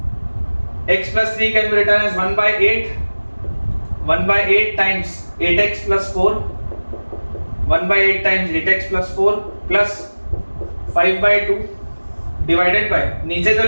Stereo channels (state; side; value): inverted; both; correlation -1.00